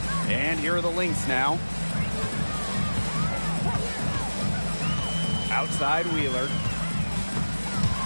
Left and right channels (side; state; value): both; inverted; correlation -1.00